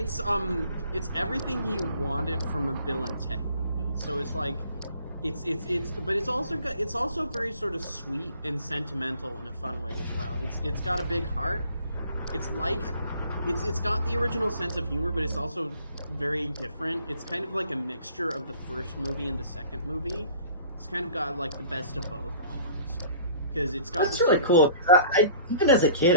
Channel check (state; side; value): inverted; both; correlation -0.51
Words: everything you wanted from a Bill and Ted movie. So it's like but it's also very sort of sweet and sentimental in a fun way as well. It's got a big heart. It's like it's got the original sense of humor, but it's also very different. It's kind of like a mixture of the first movie and the second movie. It's kind of got like the best of both almost. Because it's got That's this really sort of- cool. I even as a